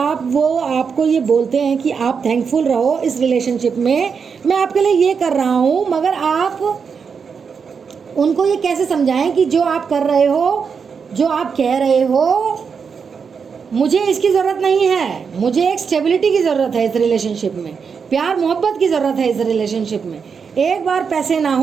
ये बोलते हैं कि आप थैंकफुल रहो इस रिलेशनशिप में, मैं आपके लिए ये कर रहा हूँ, मगर आप उनको ये कैसे समझाएं कि जो आप कर रहे हो जो आप कह रहे हो मुझे इसकी ज़रूरत नहीं है, मुझे एक स्टेबिलिटी की ज़रूरत है इस रिलेशनशिप में, प्यार मोहब्बत की ज़रूरत है इस रिलेशनशिप में। एक बार पैसे ना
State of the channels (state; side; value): quieter; left; 6.0 dB